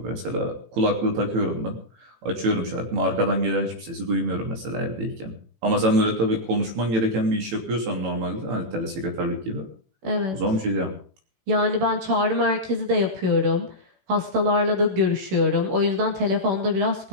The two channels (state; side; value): late; left; 18 ms